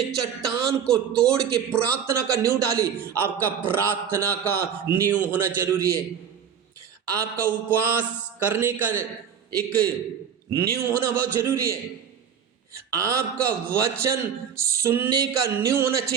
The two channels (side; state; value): left; quieter; 7.9 dB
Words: चट्टान को तोड़ के प्रार्थना का नींव डाली, आपका प्रार्थना का नींव होना जरूरी है। आपका उपवास करने का एक नींव होना बहुत जरूरी है। आपका वचन सुनने का नींव होना